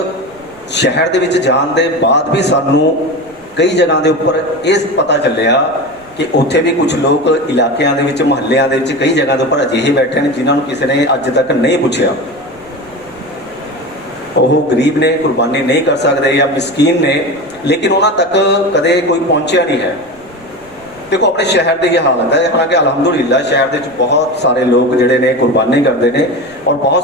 ਸ਼ਹਿਰ ਦੇ ਵਿੱਚ ਜਾਣ ਦੇ ਬਾਅਦ ਵੀ ਸਾਨੂੰ ਕਈ ਜਗ੍ਹਾ ਦੇ ਉੱਪਰ ਇਹ ਪਤਾ ਚੱਲਿਆ ਕਿ ਉੱਥੇ ਵੀ ਕੁਝ ਲੋਕ ਇਲਾਕਿਆਂ ਦੇ ਵਿੱਚ, ਮੁਹੱਲਿਆਂ ਦੇ ਵਿੱਚ, ਕਈ ਜਗ੍ਹਾ ਦੇ ਉੱਪਰ ਅਜਿਹੇ ਬੈਠੇ ਨੇ ਜਿਨ੍ਹਾਂ ਨੂੰ ਕਿਸੇ ਨੇ ਅੱਜ ਤੱਕ ਨਹੀਂ ਪੁੱਛਿਆ। ਉਹ ਗਰੀਬ ਨੇ, ਕੁਰਬਾਨੀ ਨਹੀਂ ਕਰ ਸਕਦੇ ਜਾਂ ਮਿਸਕੀਨ ਨੇ, ਲੇਕਿਨ ਉਹਨਾਂ ਤੱਕ ਕਦੇ ਕੋਈ ਪਹੁੰਚਿਆ ਨਹੀਂ ਹੈ। ਦੇਖੋ ਆਪਣੇ ਸ਼ਹਿਰ ਦੀ ਇਹ ਹਾਲਤ ਹੈ, ਹਾਲਾਂਕਿ ਅਲਹਮਦੁਲਿਲਾ ਸ਼ਹਿਰ ਦੇ ਵਿੱਚ ਬਹੁਤ ਸਾਰੇ ਲੋਕ ਜਿਹੜੇ ਨੇ ਕੁਰਬਾਨੀ ਕਰਦੇ ਨੇ ਔਰ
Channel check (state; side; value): noise; right; rumble, 28 dB below the sound